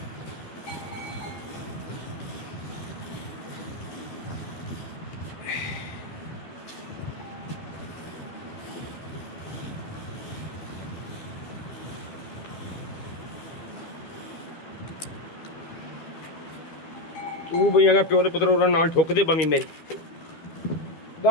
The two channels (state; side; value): late; right; 13 ms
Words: ਤੂੰ ਬਈ ਅਗਾ ਪਿਓ ਦੇ ਪੁੱਤਰ ਉਹਨਾਂ ਨਾਲ ਠੋਕਦੇ ਬਮੀ ਮੇਰੀ